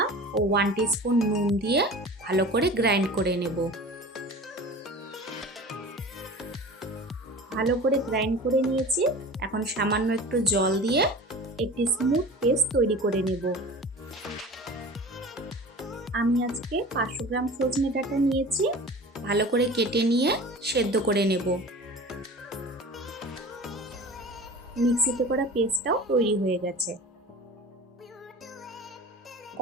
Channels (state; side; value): normal; both; correlation 0.38